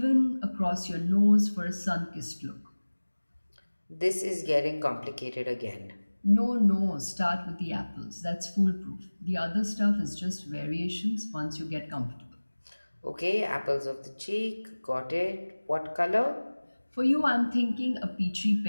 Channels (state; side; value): inverted; both; correlation -1.00